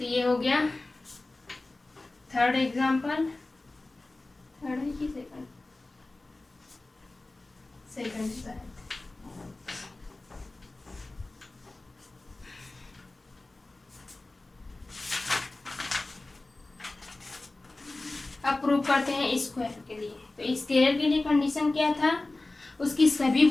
ये हो गया थर्ड एग्जाम्पल। थर्ड है कि सेकंड? सेकंड शायद। अब प्रूव करते हैं स्क्वायर के लिए। तो स्क्वायर के लिए कंडीशन क्या था? उसकी सभी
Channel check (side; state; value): right; quieter; 3.0 dB